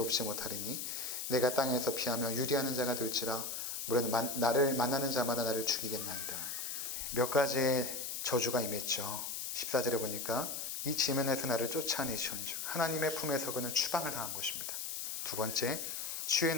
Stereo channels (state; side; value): noise; left; hiss, 4 dB below the sound